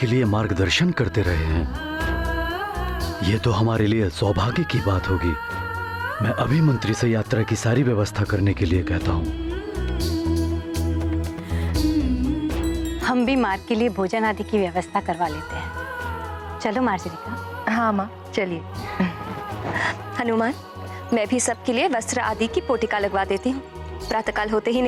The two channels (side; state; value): both; identical; correlation 1.00